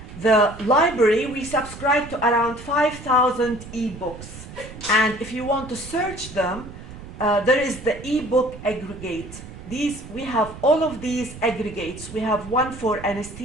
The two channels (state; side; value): noise; right; rumble, 14 dB below the sound